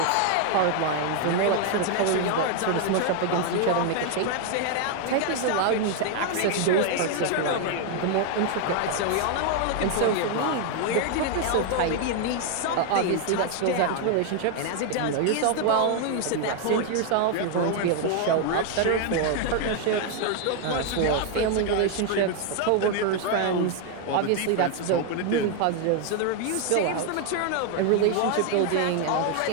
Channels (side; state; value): both; different; correlation 0.01